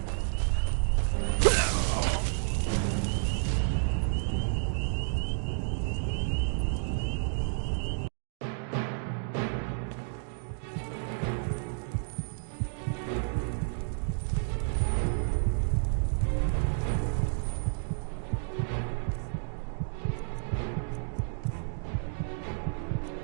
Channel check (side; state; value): left; silent; digital silence